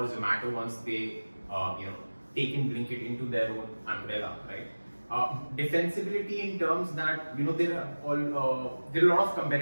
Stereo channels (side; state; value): both; inverted; correlation -1.00